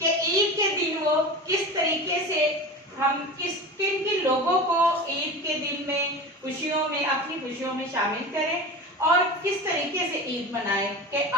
ईद के दिन वो किस तरीके से हम किन किन लोगों को ईद के दिन में खुशियों में अपनी खुशियों में शामिल करें और किस तरीके से ईद मनाएं कि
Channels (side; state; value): both; normal; correlation 0.31